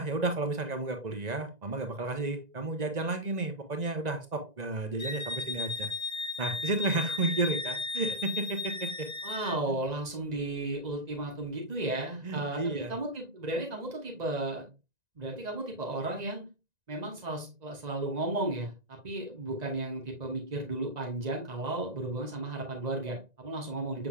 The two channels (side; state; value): left; late; 1.9 ms